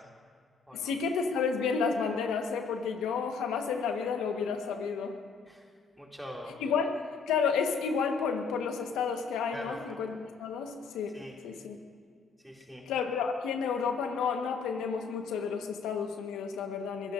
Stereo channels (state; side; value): quieter; right; 5.4 dB